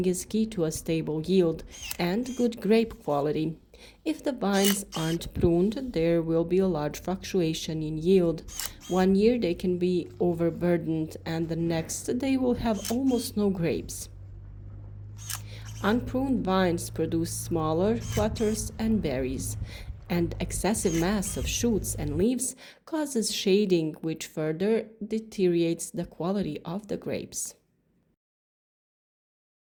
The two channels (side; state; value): both; identical; correlation 1.00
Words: is key to a stable yield and good grape quality. If the vines aren't pruned, there will be a large fluctuation in yield. One year they can be overburdened, and the next they will have almost no grapes. Unpruned vines produce smaller clusters and berries, and excessive mass of shoots and leaves causes shading, which further deteriorates the quality of the grapes.